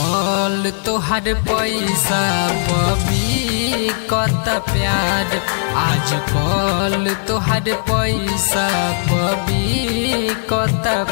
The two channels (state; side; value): silent; right; 68 dB below the other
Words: तोहर पैसा पबी कत प्यार, आज कल तोहर पैसा पबी कत